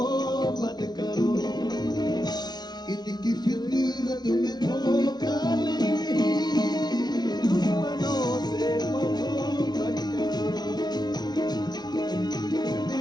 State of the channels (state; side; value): late; right; 0.20 ms